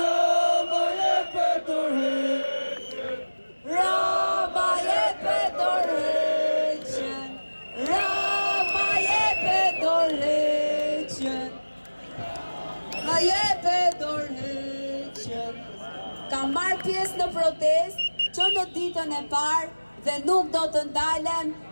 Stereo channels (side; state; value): both; inverted; correlation -1.00